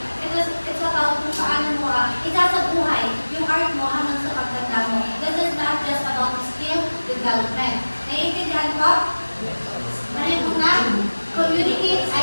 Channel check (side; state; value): both; inverted; correlation -1.00